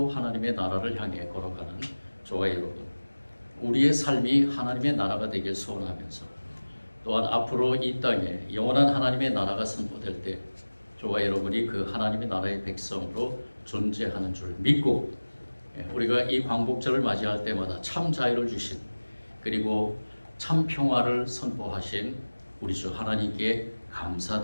하나님의 나라를 향해 걸어가는 저와 여러분, 우리의 삶이 하나님의 나라가 되길 소원하면서 또한 앞으로 이 땅에 영원한 하나님의 나라가 선포될 때 저와 여러분이 그 하나님의 나라의 백성으로 존재하는 줄 믿고 우리가 이 광복절을 맞이할 때마다 참 자유를 주신 그리고 참 평화를 선포하신 우리 주 하나님께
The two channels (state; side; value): inverted; both; correlation -1.00